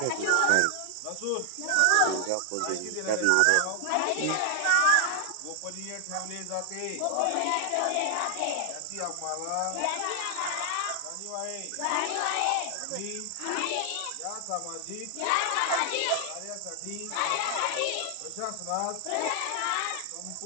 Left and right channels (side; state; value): both; different; correlation 0.00